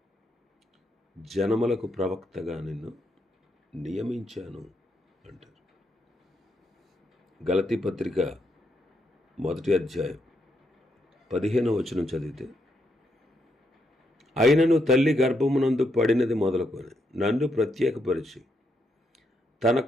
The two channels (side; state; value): both; normal; correlation 0.79